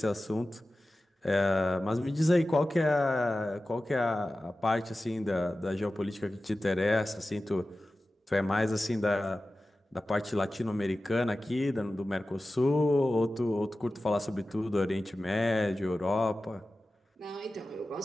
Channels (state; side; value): normal; both; correlation 0.95